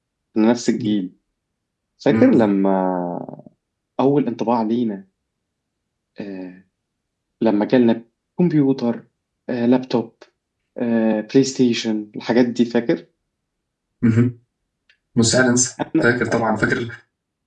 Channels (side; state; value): both; identical; correlation 1.00